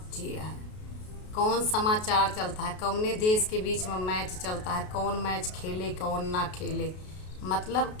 जिया है, कौन समाचार चलता है, कौने देश के बीच में मैच चलता है, कौन मैच खेले कौन ना खेले। मतलब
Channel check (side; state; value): right; late; 33 ms